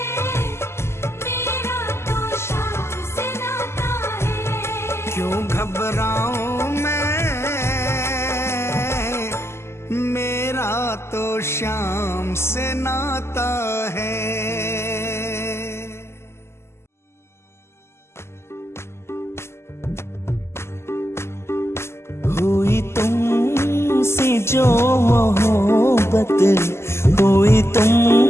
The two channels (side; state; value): right; late; 0.12 ms